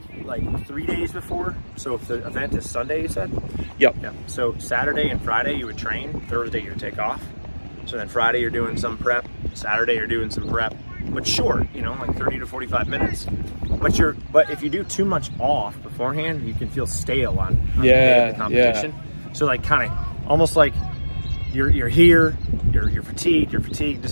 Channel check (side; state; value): both; inverted; correlation -1.00